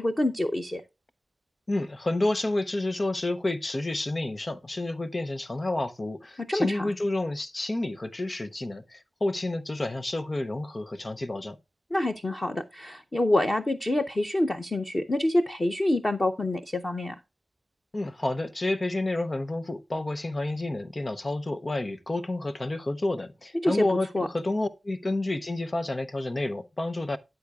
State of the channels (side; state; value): both; normal; correlation 0.97